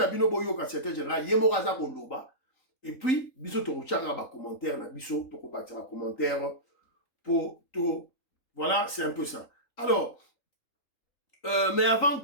bino boyo ka secrétaire général, Yemoraza Koloba, et puis, biso Toroche a commentaire, na biso Toko batira commentaire pour tout. Voilà, c'est un peu ça. Alors, mais avant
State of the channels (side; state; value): right; late; 3.9 ms